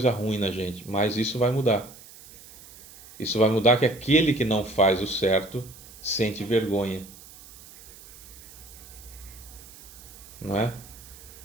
ruim na gente, mas isso vai mudar. Isso vai mudar que aquele que não faz o certo sente vergonha. Não é?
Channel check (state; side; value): noise; right; hiss, 19 dB below the sound